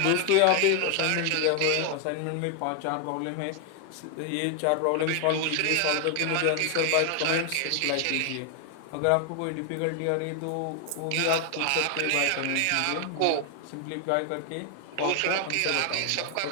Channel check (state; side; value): different; both; correlation 0.00